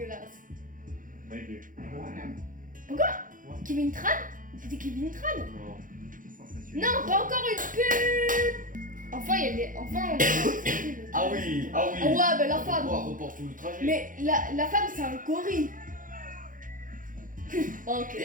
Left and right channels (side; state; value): left; late; 0.39 ms